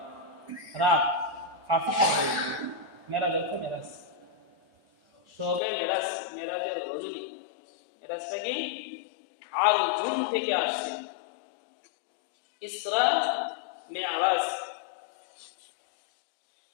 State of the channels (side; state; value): right; drops out; at 5.6 s